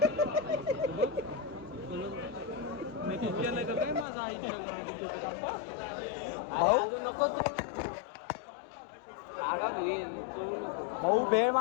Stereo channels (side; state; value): right; drops out; at 4.0 s